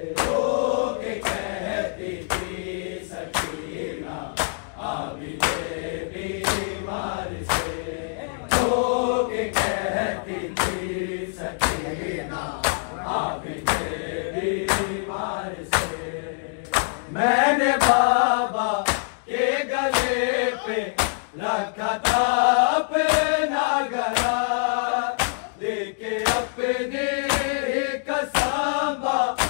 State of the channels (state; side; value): silent; right; digital silence